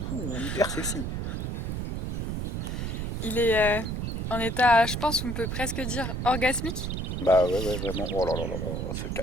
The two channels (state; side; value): noise; right; rumble, 2 dB below the sound